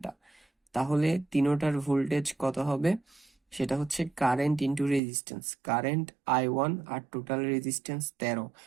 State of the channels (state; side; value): drops out; left; at 5.0 s